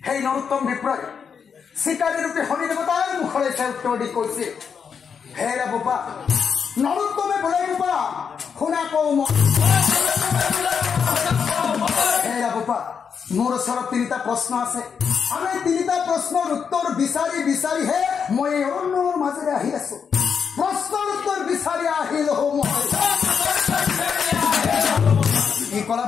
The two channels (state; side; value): quieter; right; 6.6 dB